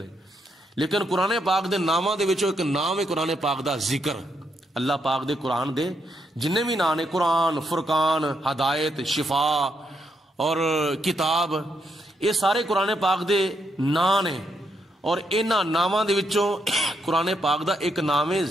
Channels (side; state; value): both; normal; correlation 0.78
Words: لیکن قرآن پاک دے ناماں دے وچوں ایک نام ہے قرآن پاک دا ذکر. اللہ پاک دے قرآن دے جننے بھی نام نے, قرآن, فرقان, ہدایت, شفا اور کتاب, یہ سارے قرآن پاک دے نام نے. اور انہاں ناماں دے وچوں قرآن پاک دا ایک نام ہے